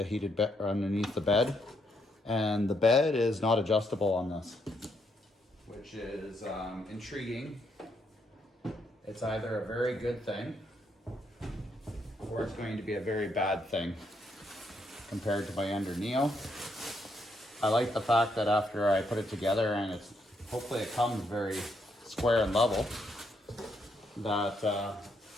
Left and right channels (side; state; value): both; normal; correlation 0.76